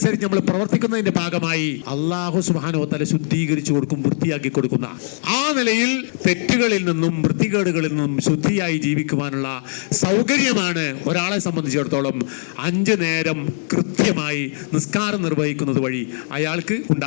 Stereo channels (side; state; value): right; silent; 61 dB below the other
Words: നമ്മൾ പ്രവർത്തിക്കുന്നതിന്റെ ഭാഗമായി അല്ലാഹു സുബ്ഹാനഹു വ തആല ശുദ്ധീകരിച്ചു കൊടുക്കും, വൃത്തിയാക്കി കൊടുക്കുന്ന. ആ നിലയിൽ തെറ്റുകളിൽ നിന്നും വൃത്തികേടുകളിൽ നിന്നും ശുദ്ധിയായി ജീവിക്കുവാനുള്ള സൗകര്യമാണ് ഒരാളെ സംബന്ധിച്ചിടത്തോളം 5 നേരം കൃത്യമായി നിസ്കാരം നിർവഹിക്കുന്നത് വഴി അയാൾക്ക്